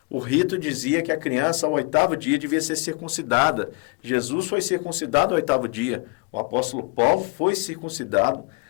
O rito dizia que a criança ao 8º dia devia ser circuncidada. Jesus foi circuncidado ao 8º dia. O apóstolo Paulo foi circuncidado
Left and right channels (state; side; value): quieter; right; 30.1 dB